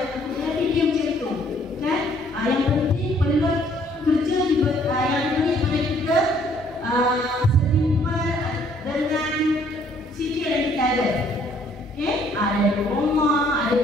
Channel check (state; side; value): normal; both; correlation 0.63